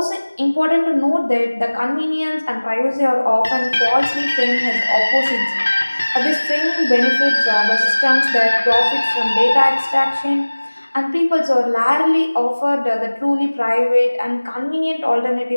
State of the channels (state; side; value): inverted; both; correlation -1.00